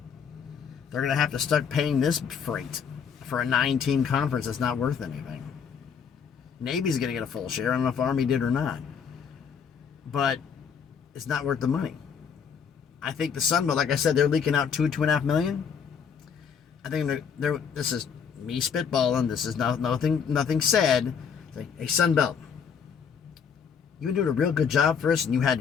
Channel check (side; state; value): right; quieter; 6.9 dB